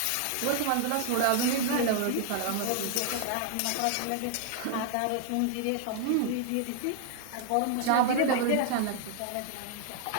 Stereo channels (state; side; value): different; both; correlation 0.00